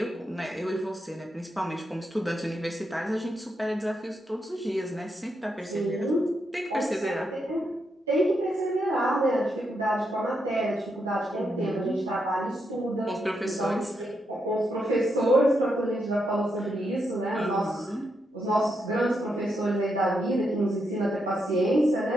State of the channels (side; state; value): both; normal; correlation 0.82